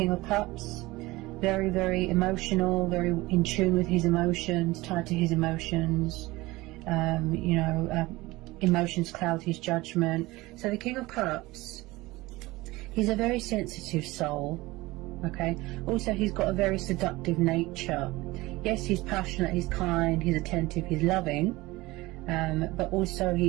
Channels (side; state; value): left; quieter; 20.3 dB